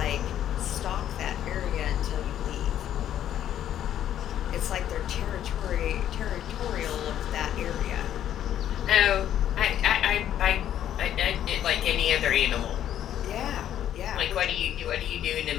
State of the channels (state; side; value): quieter; right; 10.9 dB